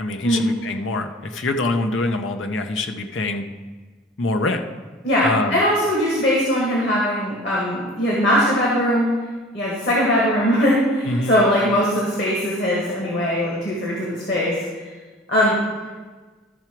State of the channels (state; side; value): normal; both; correlation 0.42